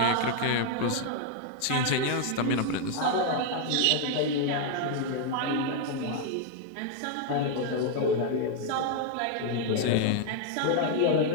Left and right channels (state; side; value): different; both; correlation 0.00